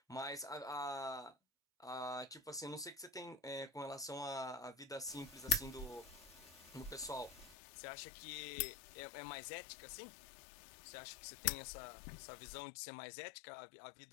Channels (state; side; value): drops out; right; at 7.6 s